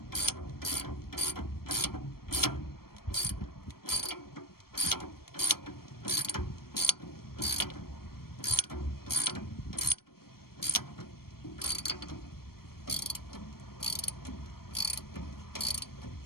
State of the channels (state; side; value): late; right; 0.94 ms